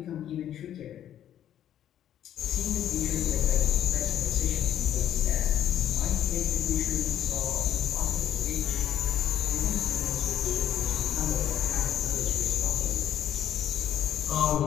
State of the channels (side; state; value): right; quieter; 10.8 dB